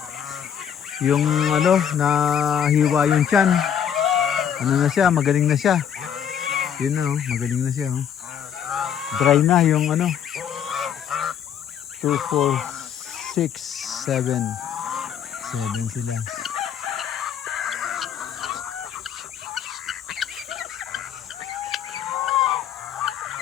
nahiwa yung tiyan. Na siya, magaling na siya. Yun magaling na siya. Dry na yung 2, 4, 6, 7. 7 sila.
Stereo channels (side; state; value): right; quieter; 8.7 dB